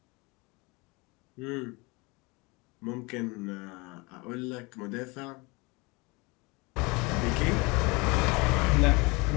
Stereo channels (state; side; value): quieter; right; 26.5 dB